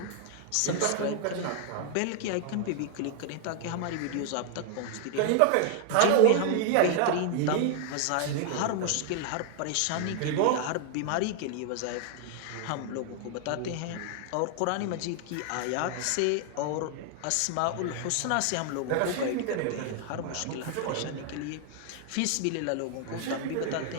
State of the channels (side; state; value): both; different; correlation 0.00